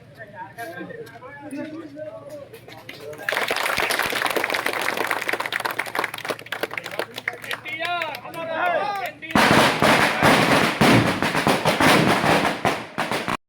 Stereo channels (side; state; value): both; identical; correlation 1.00